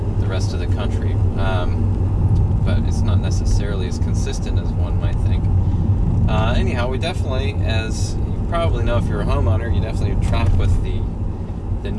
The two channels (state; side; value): identical; both; correlation 1.00